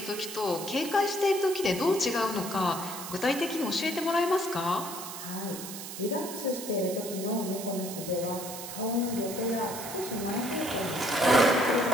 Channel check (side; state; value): right; noise; hiss, 9 dB below the sound